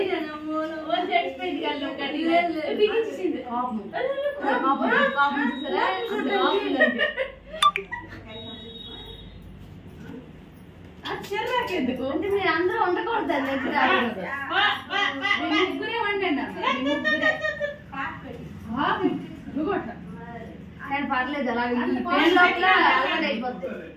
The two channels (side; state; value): both; identical; correlation 1.00